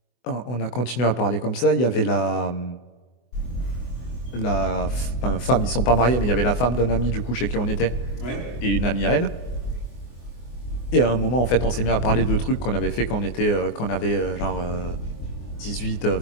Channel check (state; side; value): late; right; 24 ms